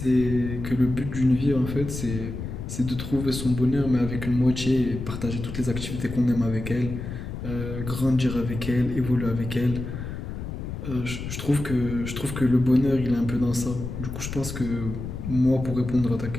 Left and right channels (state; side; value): noise; left; rumble, 7 dB below the sound